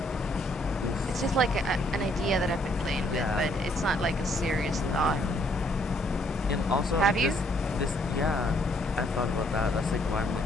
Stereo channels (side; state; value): both; normal; correlation 0.68